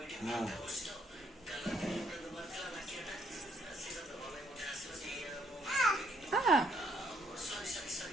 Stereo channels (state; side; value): normal; both; correlation 0.69